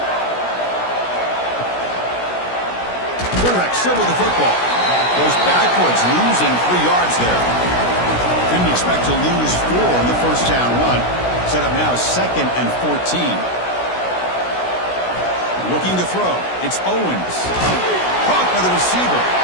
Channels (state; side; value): late; right; 16 ms